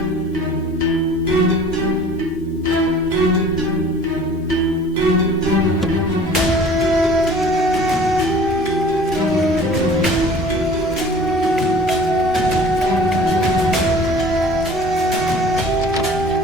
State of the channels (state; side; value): normal; both; correlation 0.46